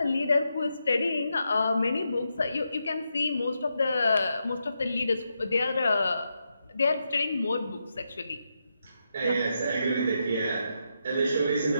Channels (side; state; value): both; inverted; correlation -0.84